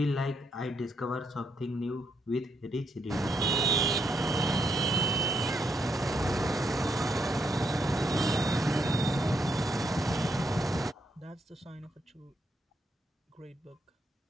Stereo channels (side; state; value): both; normal; correlation 0.78